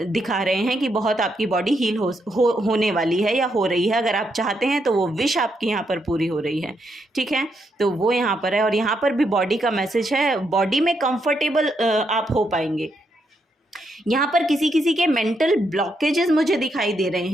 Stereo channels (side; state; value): both; normal; correlation 0.79